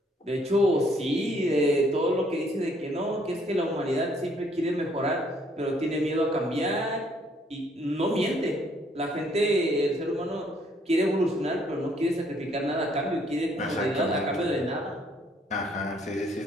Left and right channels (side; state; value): both; normal; correlation 0.66